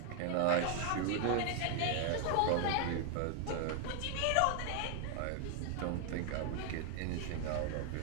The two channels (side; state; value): both; different; correlation 0.00